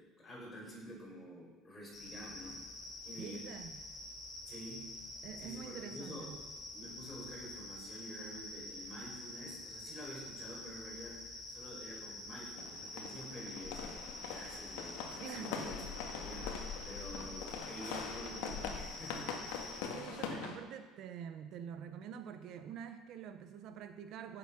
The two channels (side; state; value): both; normal; correlation 0.42